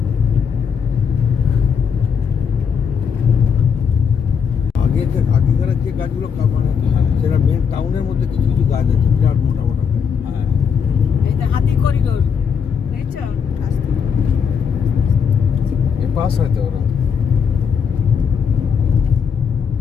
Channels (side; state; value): right; quieter; 6.7 dB